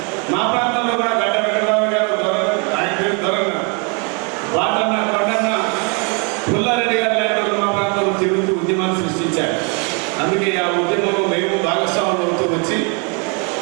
మా ప్రాంతంలో కూడా గడ్డ వెంకటరావు గారు ఆయన పేరు దొరన్న వాటన్న కొండన్న పుల్లారెడ్డి గారు లాంటి మా ప్రాంతంలో తిరుగుతూ ఉద్యమాన్ని సృష్టించారు. అందుకే ఆ ఉద్యమంలో మేము భాగస్వాములు అవుతూ వచ్చి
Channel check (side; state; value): left; quieter; 34.4 dB